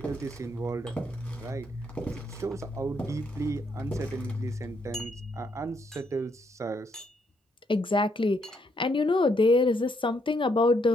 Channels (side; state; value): both; normal; correlation 0.74